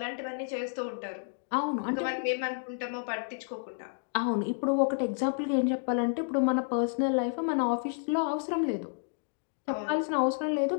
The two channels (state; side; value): silent; right; digital silence